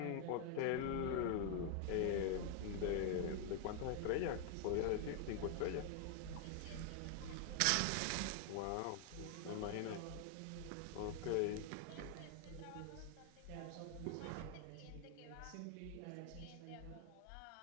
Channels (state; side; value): different; both; correlation 0.00